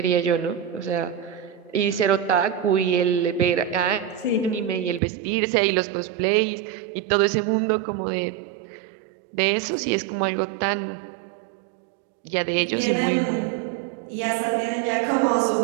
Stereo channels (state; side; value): drops out; left; at 5.0 s